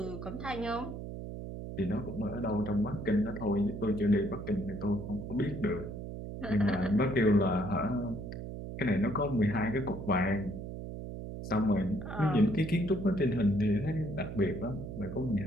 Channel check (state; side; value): noise; right; hum, 8 dB below the sound